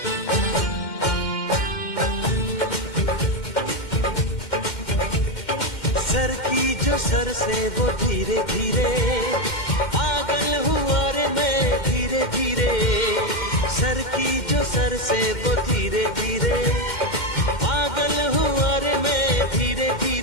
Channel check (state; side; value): late; right; 2.1 ms